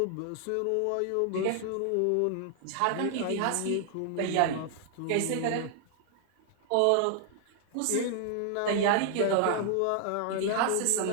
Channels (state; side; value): different; both; correlation 0.00